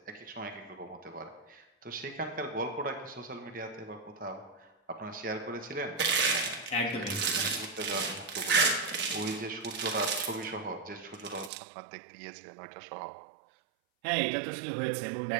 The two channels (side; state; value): left; drops out; at 11.5 s